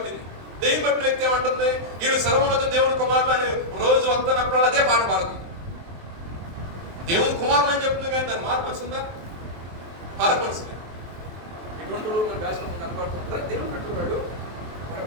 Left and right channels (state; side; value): late; left; 23 ms